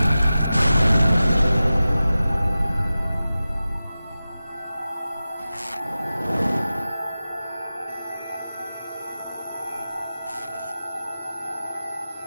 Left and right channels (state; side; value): inverted; both; correlation -0.95